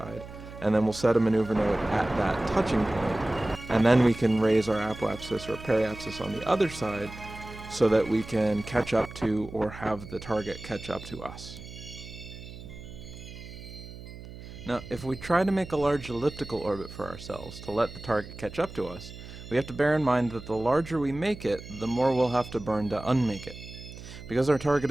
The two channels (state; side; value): noise; right; hum, 14 dB below the sound